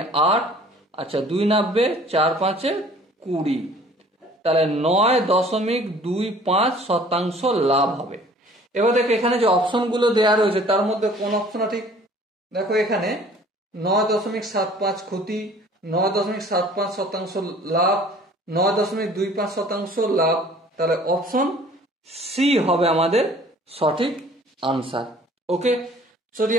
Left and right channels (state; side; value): normal; both; correlation 0.52